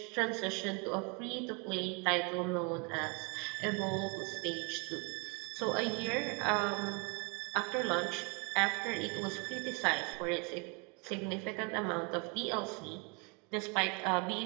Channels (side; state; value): left; quieter; 32.9 dB